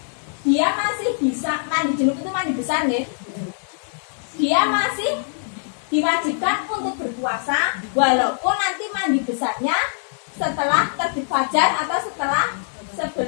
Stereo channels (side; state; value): right; silent; digital silence